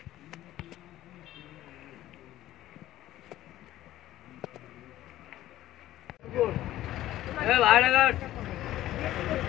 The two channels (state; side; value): quieter; right; 14.3 dB